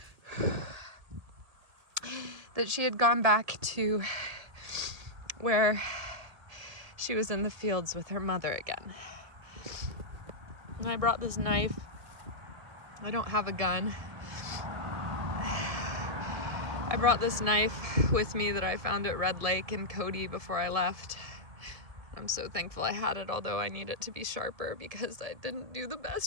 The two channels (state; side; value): late; left; 1.7 ms